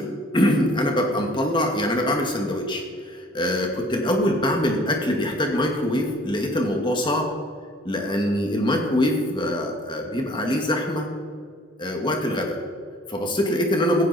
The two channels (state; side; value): normal; both; correlation 0.54